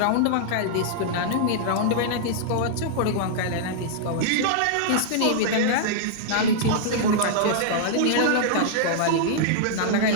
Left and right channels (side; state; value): both; different; correlation -0.01